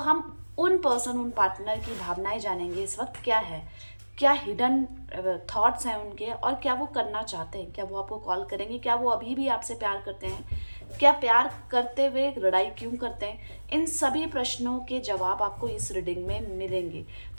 उन पर्सन, उन पार्टनर की भावनाएं जानेंगे इस वक्त क्या है, क्या हिडन थॉट्स हैं उनके और क्या वो करना चाहते हैं। क्या वो आपको कॉल करेंगे? क्या वो अभी भी आपसे प्यार करते हैं? क्या प्यार करते हुए लड़ाई क्यों करते हैं? इन सभी प्रश्नों के जवाब आपको इस रीडिंग में मिलेंगे।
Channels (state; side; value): inverted; both; correlation -1.00